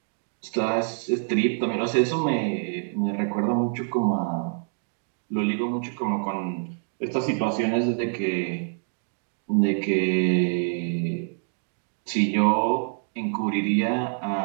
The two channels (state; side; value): silent; left; 61 dB below the other